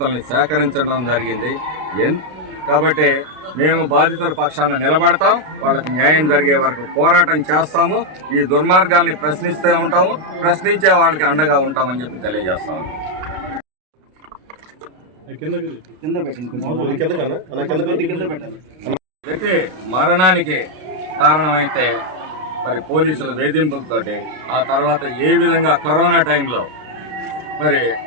సేకరించడం జరిగింది. కాబట్టి మేము బాధితుల పక్షాన నిలబడతాం. వాళ్ళకి న్యాయం జరిగే వరకు పోరాటం చేస్తాము. ఈ దుర్మార్గాల్ని ప్రశ్నిస్తూ ఉంటాము. ప్రశ్నించే వాళ్ళకి అండగా ఉంటామని చెప్పి తెలియజేస్తాము. వ్యక్తి మరణానికి కారణమైతే మరి పోలీసుల వేధింపులతోటి ఆ తర్వాత ఏ విధంగా కరోనా టైంలో మరి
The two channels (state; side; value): late; left; 33 ms